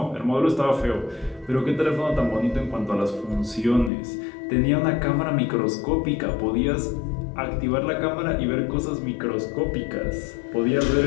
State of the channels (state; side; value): drops out; right; at 3.9 s